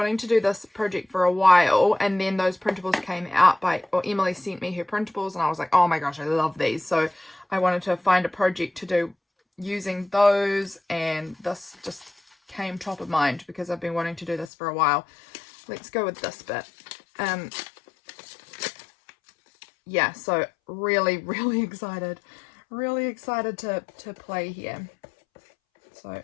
to do this project for a while, and then those printables came out or Emily sent me her printables, and I was like, oh my gosh, I love these. So I wanted to find a project to do using those, and this just came top of mind because I've been wanting to do this for a while. Let's go with this bit. Yeah, so really excited. Really excited to play here. So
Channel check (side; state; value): right; drops out; at 14.5 s